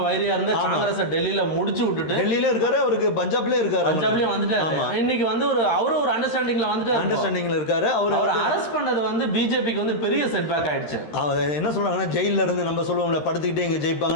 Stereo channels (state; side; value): late; right; 13 ms